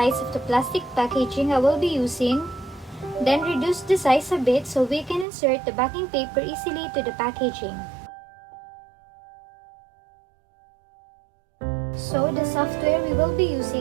of the plastic packaging I will be using, then reduce the size a bit so we can insert the backing paper easily to the packaging. So the software we will be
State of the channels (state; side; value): drops out; left; at 5.2 s